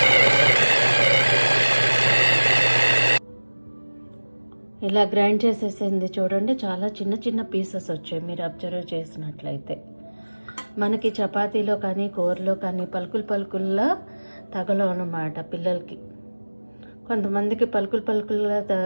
ఇలా గ్రైండ్ చేసేసింది చూడండి. చాలా చిన్న చిన్న పీసెస్ వచ్చాయి మీరు అబ్జర్వ్ చేసినట్లయితే. మనకి చపాతీలో కానీ కూరలో కానీ పలుకుల్లా తగలవు అన్నమాట పిల్లలకి. కొంతమందికి పలుకుల్లా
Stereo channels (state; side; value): inverted; both; correlation -1.00